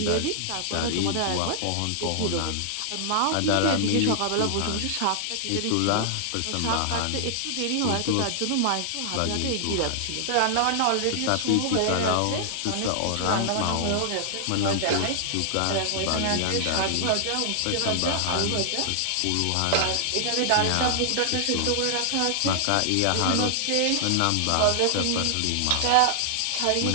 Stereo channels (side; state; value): both; different; correlation -0.01